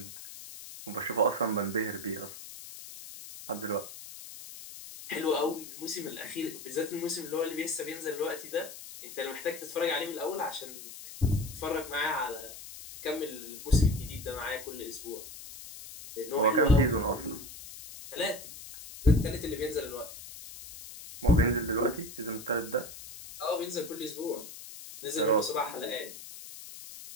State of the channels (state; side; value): noise; left; hiss, 13 dB below the sound